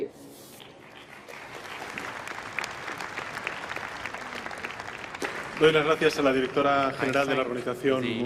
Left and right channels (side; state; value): both; identical; correlation 1.00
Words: Doy las gracias a la directora general de la Organización